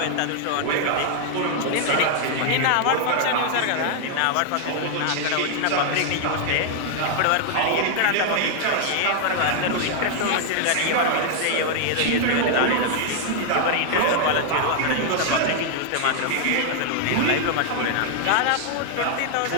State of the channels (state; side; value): different; both; correlation 0.00